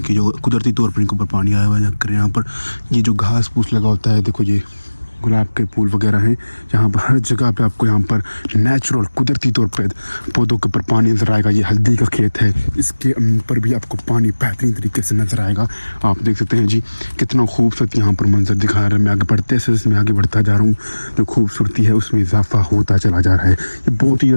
जो कुदरती तौर पर इनके ऊपर पानी आया हुआ है। यहाँ पर ये जो घास फूस लगा होता है, देखो ये गुलाब के फूल वगैरह हैं। यहाँ पर हर जगह पे आपको यहाँ पर नेचुरल कुदरती तौर पे पौधों के ऊपर पानी नजर आएगा। ये हल्दी का खेत है, इसके ऊपर भी आपको पानी बेहतरीन तरीके से नजर आएगा। आप देख सकते हैं जी कितना खूबसूरत यहाँ पर मंजर दिखा रहा है। मैं आगे बढ़ते से मैं आगे बढ़ता जा रहा हूँ, जो खूबसूरती है उसमें इजाफा होता चला जा रहा है। ये बहुत ही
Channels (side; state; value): both; inverted; correlation -1.00